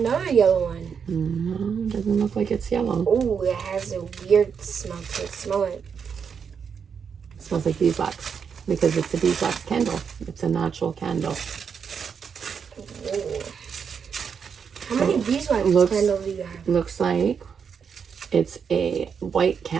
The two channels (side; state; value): left; quieter; 6.7 dB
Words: yellow one. No, doesn't look like it's yellow. Oh, it has a weird smell to it. Smell it. It smells like beeswax because it's a beeswax candle. It's a natural candle. Whoa. How many beeswax looks- candles do you have? Looks like it's a white